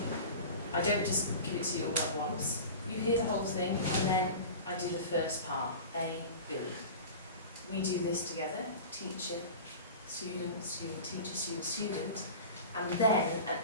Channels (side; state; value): both; inverted; correlation -0.33